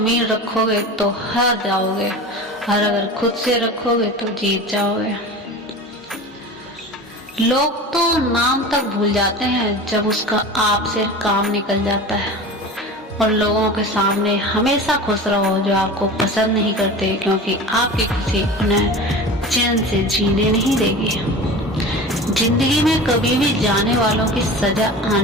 रखोगे तो हार जाओगे, और अगर खुद से रखोगे तो जीत जाओगे। लोग तो नाम तक भूल जाते हैं जब उसका आप से काम निकल जाता है। और लोगों के सामने हमेशा खुश रहो जो आपको पसंद नहीं करते, क्योंकि आपकी खुशी उन्हें चैन से जीने नहीं देगी। जिंदगी में कभी भी जाने वालों की सजा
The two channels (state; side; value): normal; both; correlation 0.34